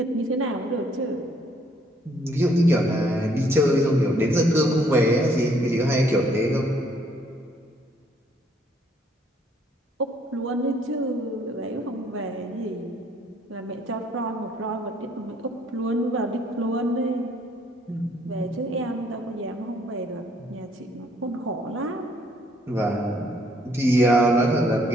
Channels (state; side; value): normal; both; correlation 0.65